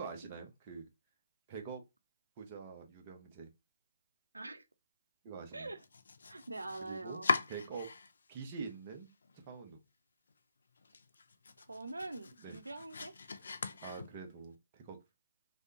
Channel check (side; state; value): both; inverted; correlation -0.80